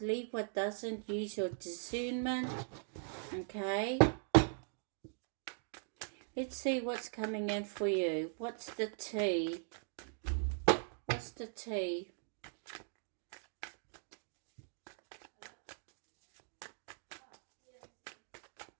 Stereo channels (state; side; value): silent; left; digital silence